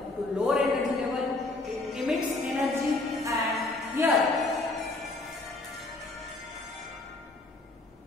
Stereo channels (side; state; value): right; quieter; 3.0 dB